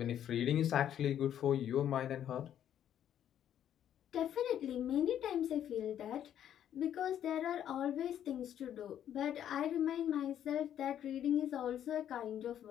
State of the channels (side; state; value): right; quieter; 10.3 dB